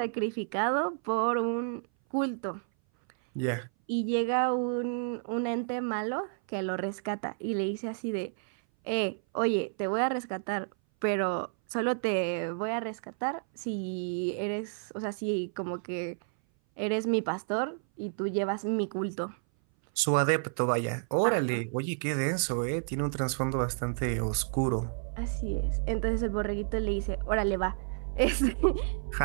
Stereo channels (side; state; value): left; silent; 57 dB below the other